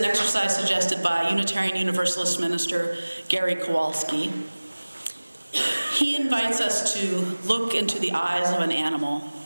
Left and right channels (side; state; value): both; inverted; correlation -1.00